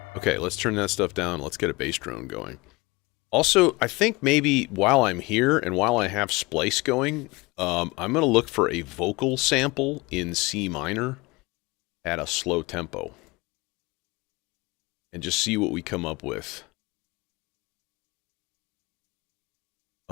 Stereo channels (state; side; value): quieter; right; 24.1 dB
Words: Okay, let's turn that stuff down. Let's get a bass drone going. Also, I think maybe while I'm here and while I have splice going, I'm going to look for a vocal sample in C minor at a slow tempo. And just see what we come up with.